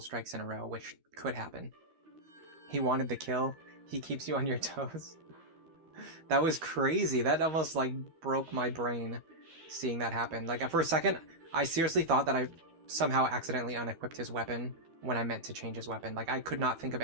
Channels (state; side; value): late; left; 13 ms